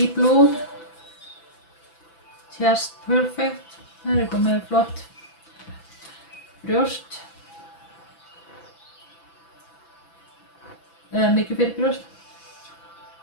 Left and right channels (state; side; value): late; right; 6.0 ms